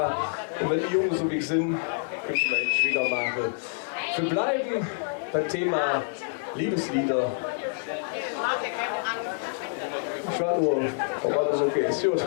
und wenn die Jungen so wie ich sind, küssen wir jetzt wieder machen. Wir bleiben beim Thema Liebeslieder. Ich war nur, ob alles okay ist. Gut.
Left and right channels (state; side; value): silent; right; 60 dB below the other